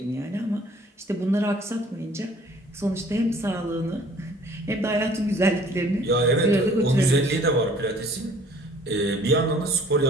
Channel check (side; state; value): both; normal; correlation 0.54